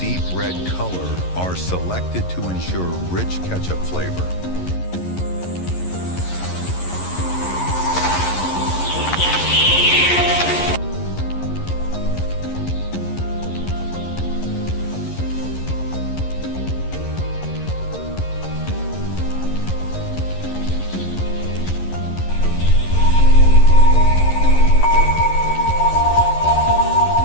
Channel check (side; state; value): right; late; 11 ms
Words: deep red color are selected to ensure rich ketchup flavor.